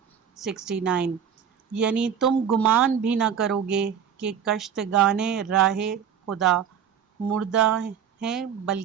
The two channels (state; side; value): quieter; left; 8.1 dB